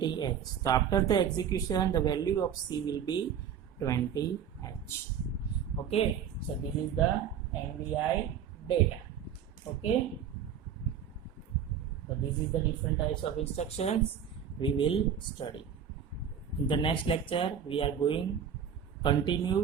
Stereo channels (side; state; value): left; quieter; 8.2 dB